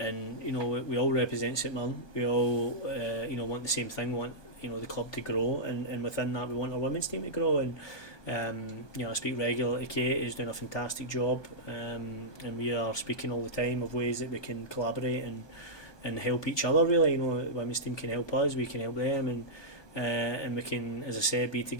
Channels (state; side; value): late; right; 1.2 ms